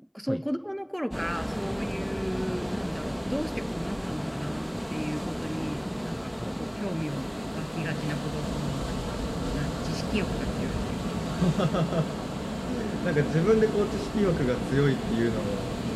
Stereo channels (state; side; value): identical; both; correlation 1.00